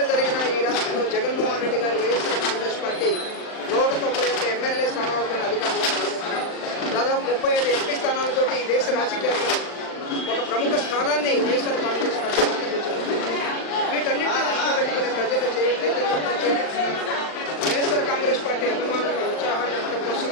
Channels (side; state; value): right; late; 39 ms